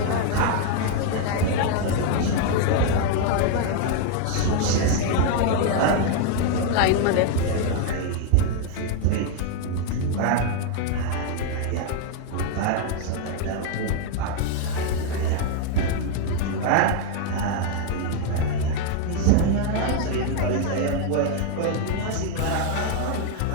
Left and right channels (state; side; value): different; both; correlation 0.00